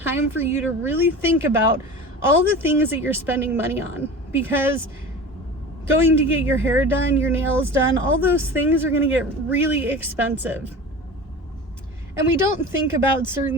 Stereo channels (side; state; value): both; normal; correlation 0.34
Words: for you to really think about all the things that you're spending money on, because going to get your hair done, your nails done, all those things are going to get really expensive. And we don't think about